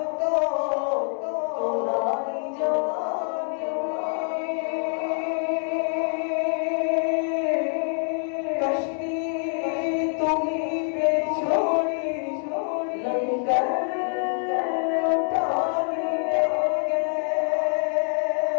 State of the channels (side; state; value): right; silent; 61 dB below the other